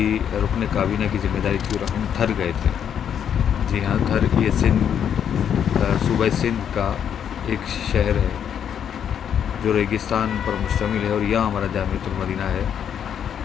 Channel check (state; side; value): quieter; right; 8.6 dB